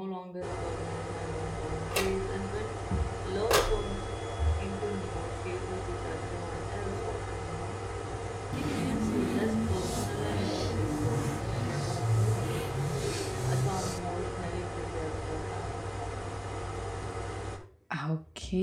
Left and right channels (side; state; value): both; identical; correlation 1.00